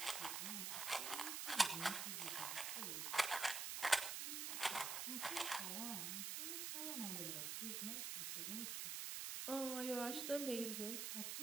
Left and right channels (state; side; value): noise; right; hiss, 2 dB below the sound